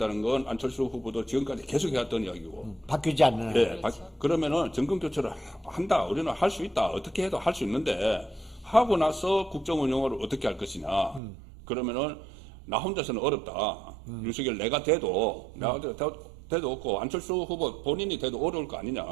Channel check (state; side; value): drops out; left; at 11.2 s